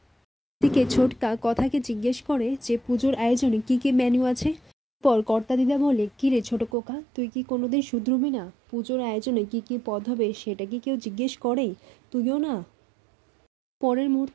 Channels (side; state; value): left; drops out; at 6.7 s